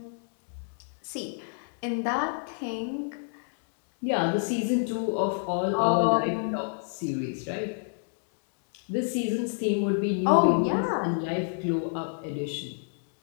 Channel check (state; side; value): silent; right; digital silence